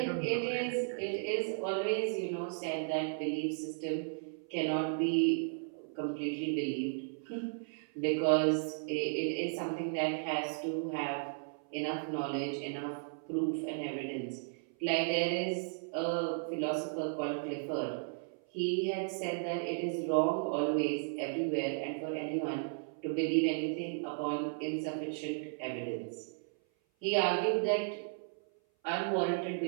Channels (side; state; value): left; silent; 54 dB below the other